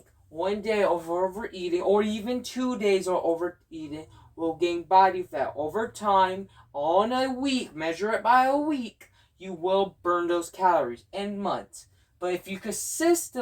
one day of overeating or even 2 days of overeating will gain body fat. Over time, on a week, measure it by a week, you will burn those calories in months. But if you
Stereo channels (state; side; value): identical; both; correlation 1.00